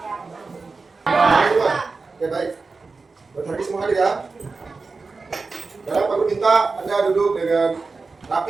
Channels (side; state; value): left; quieter; 4.1 dB